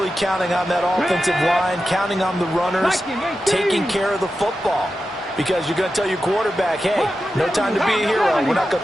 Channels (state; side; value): normal; both; correlation 0.91